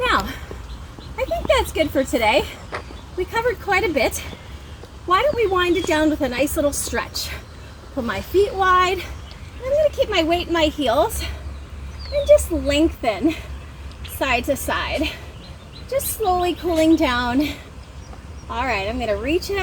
Now, I think that's good for today. We covered quite a bit. Why don't we wind it down with a nice little stretch? Pull my feet wide. I'm gonna keep my weight in my heels and just lengthen side to side. Just slowly cooling down. All right, I'm gonna reach it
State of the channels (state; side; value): identical; both; correlation 1.00